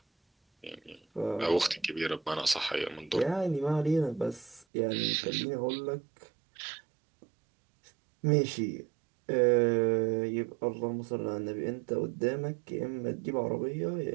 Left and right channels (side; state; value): left; drops out; at 4.7 s